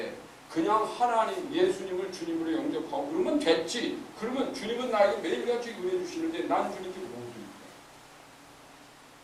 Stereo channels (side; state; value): both; identical; correlation 1.00